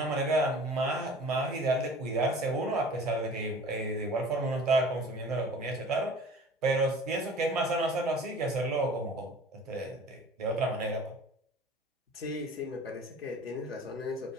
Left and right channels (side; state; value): both; normal; correlation 0.44